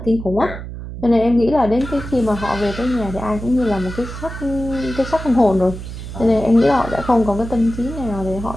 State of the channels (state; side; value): noise; right; hum, 10 dB below the sound